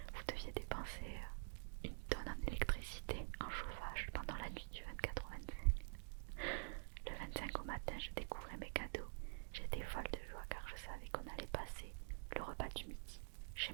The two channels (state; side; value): silent; left; digital silence